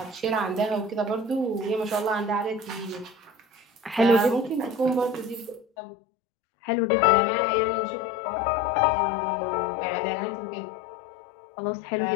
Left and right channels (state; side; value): drops out; right; at 5.7 s